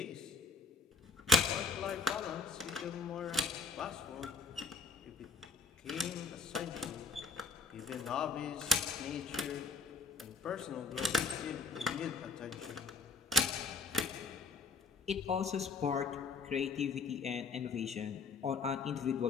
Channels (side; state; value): right; quieter; 4.0 dB